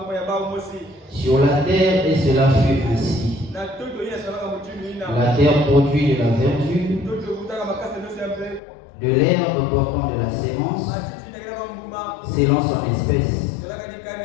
Sur la terre, et cela fut ainsi. La terre produit de la verdure, de l'herbe portant de la sémence, selon son espèce,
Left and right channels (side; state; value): right; drops out; at 8.6 s